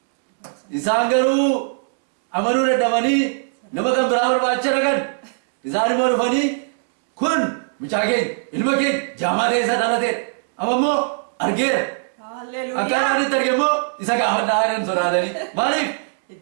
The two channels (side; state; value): left; silent; digital silence